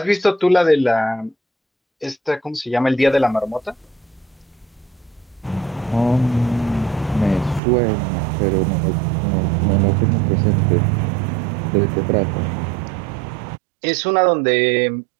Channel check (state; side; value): drops out; left; at 7.6 s